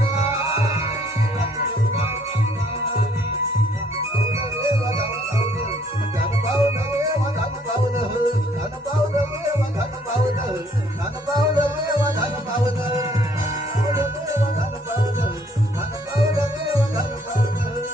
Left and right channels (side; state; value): both; normal; correlation 0.64